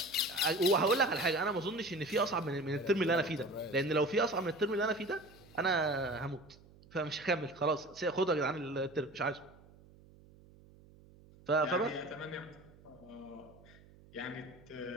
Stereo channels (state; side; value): noise; right; hum, 24 dB below the sound